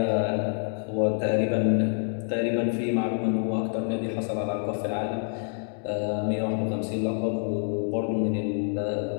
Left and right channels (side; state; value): right; silent; 60 dB below the other